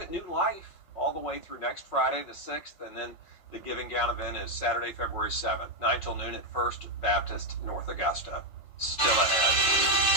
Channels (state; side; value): late; right; 5.4 ms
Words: new life all the way through next Friday the 6th, and then the Giving Gown event is Saturday, February 7th, 9 till noon at First Baptist, North Augusta. Still ahead.